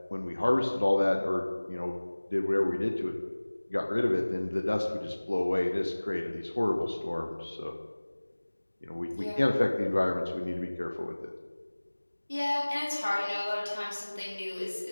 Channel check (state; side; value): inverted; both; correlation -1.00